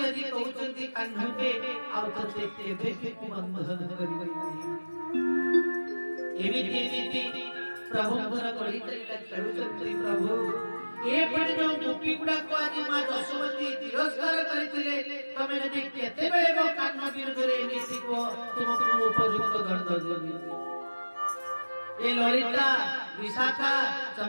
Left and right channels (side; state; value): both; inverted; correlation -1.00